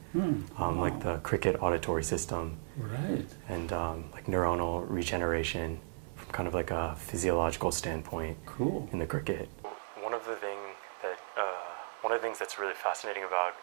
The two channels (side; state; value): left; silent; 54 dB below the other